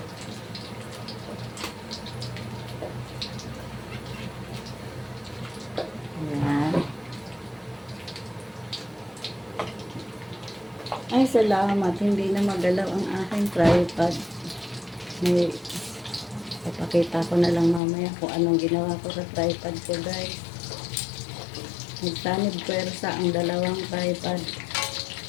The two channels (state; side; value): drops out; right; at 17.8 s